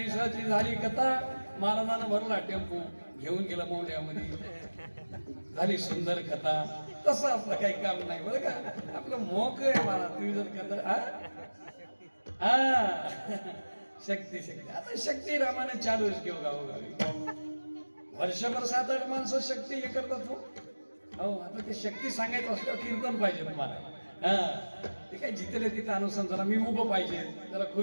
झाली कथा, महाराजानं भरला टेम्पो, घेऊन गेला मोहल्यामध्ये. झाली सुंदर कथा. तसं आपलं काही काम नाही बरं का, आपलं मोक आहे महाराज. तुम्ही जर कथा शक्ती शक्ती, आता शक्ती रामाने चालूच घेऊ गावोगावी. वर्षभर 7-8 माणसं शक्ती हे करतात. हो, आता ते शक्ती सांगायचं असलं कीर्तन पाहिजे तुम्हाला. ते काय जिथले तिथं अनुसरण, जरा मी उभं पाहिजे, जरा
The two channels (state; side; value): inverted; both; correlation -1.00